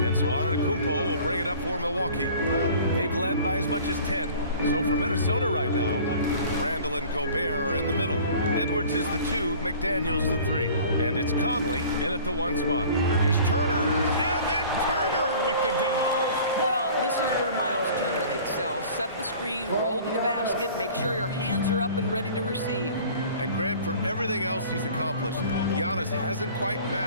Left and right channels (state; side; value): inverted; both; correlation -0.46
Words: And so Antetokounmpo will bring it up for Milwaukee. They've led by as much as 10. So for Minnesota right now, Randall and Gobert are in the middle. Edwards is the 2, McDaniels the 3. And it's Conley in at the 1 spot. Here's Turner, and then Turner with the dunk. Well, this is where Miles Turner excels. Set the screen, roll to the basket, make sure your hands are up and ready to receive. And Grant, for everything else he's accomplished, Giannis hasn't quite